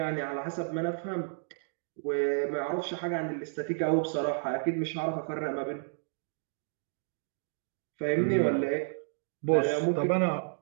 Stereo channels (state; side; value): silent; left; digital silence